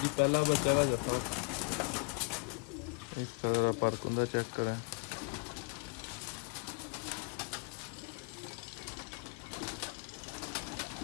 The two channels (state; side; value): quieter; right; 33.2 dB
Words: पहला बच्चा का जाता इस तरह पर चेक करें।